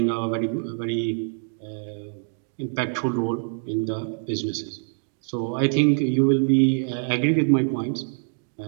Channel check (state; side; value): silent; left; digital silence